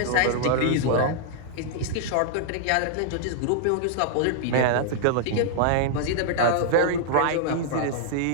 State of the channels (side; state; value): both; different; correlation -0.01